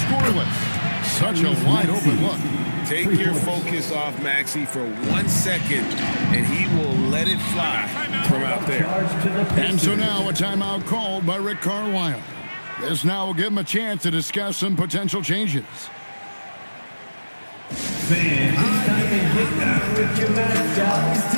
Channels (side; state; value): both; inverted; correlation -1.00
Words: scoreless. Such a wide open look. Take your focus off Maxey for 1 second, and he will let it fly from out there. And so now a timeout called by Rick Carlisle. This now will give him a chance to discuss some potential changes. Fans, it's time to get down with your mascots.